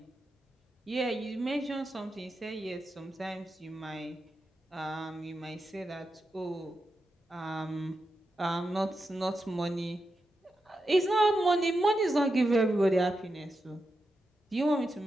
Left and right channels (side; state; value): both; normal; correlation 0.88